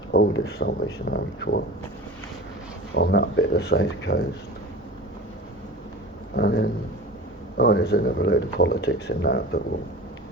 oldest Salvation Army Corps on that bit of the south coast. And then, there's another load of politics in that, but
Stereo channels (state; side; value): normal; both; correlation 0.35